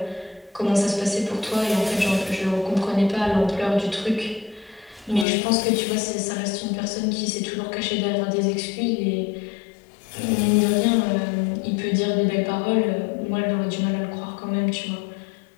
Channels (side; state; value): right; drops out; at 5.2 s